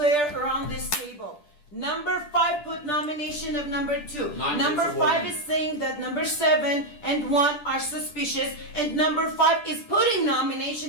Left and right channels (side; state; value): right; late; 10 ms